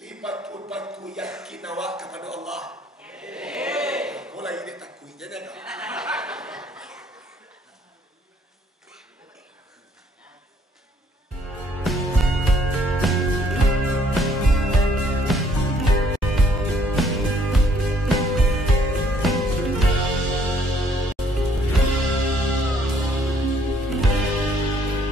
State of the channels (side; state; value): both; normal; correlation 0.64